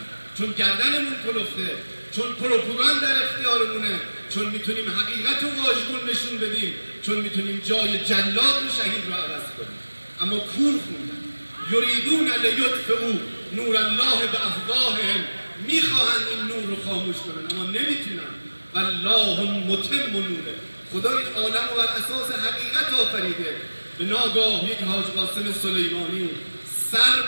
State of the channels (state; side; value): inverted; both; correlation -1.00